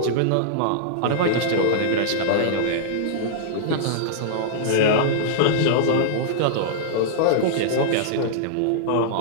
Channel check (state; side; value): different; both; correlation -0.02